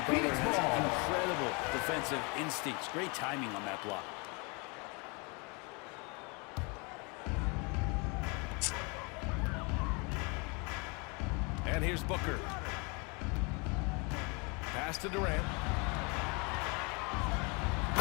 Butler has incredible defensive instincts. Great timing on that block. And here's Booker. Pass to Durant.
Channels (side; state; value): right; quieter; 30.9 dB